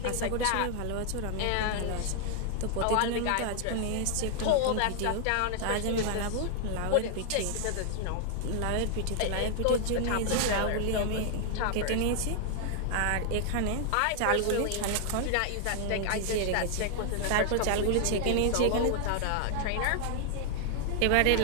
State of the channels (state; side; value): different; both; correlation 0.00